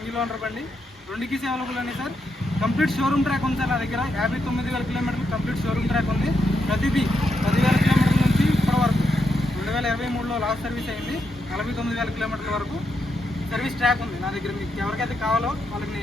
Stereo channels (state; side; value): normal; both; correlation 0.82